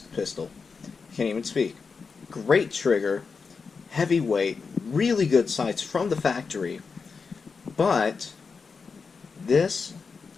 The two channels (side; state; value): right; quieter; 5.1 dB